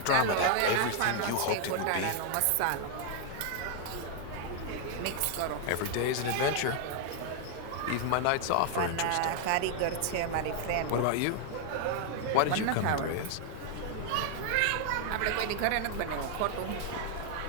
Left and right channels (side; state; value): both; different; correlation 0.00